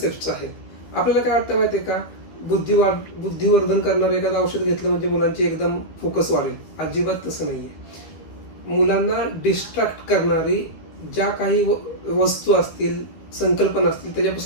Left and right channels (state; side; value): late; right; 12 ms